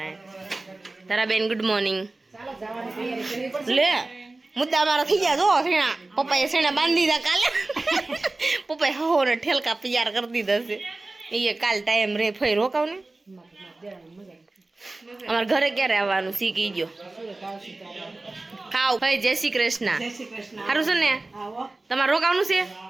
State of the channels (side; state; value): left; quieter; 3.1 dB